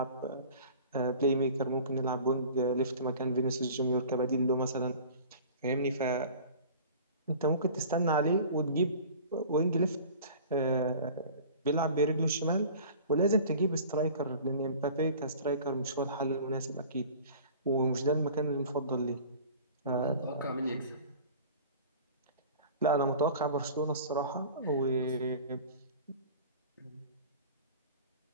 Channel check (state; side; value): inverted; both; correlation -0.43